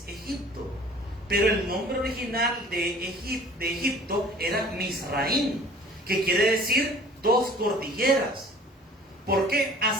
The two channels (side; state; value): both; normal; correlation 0.49